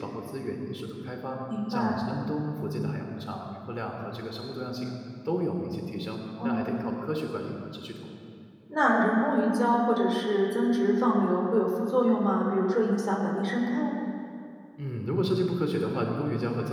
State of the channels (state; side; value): identical; both; correlation 1.00